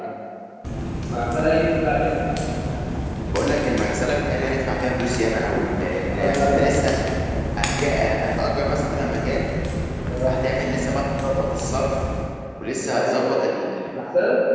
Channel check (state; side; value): identical; both; correlation 1.00